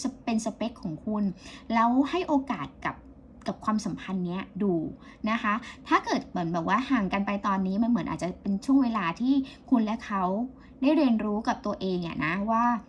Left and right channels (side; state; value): both; identical; correlation 1.00